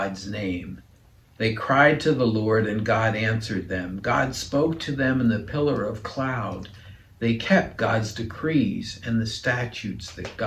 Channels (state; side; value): identical; both; correlation 1.00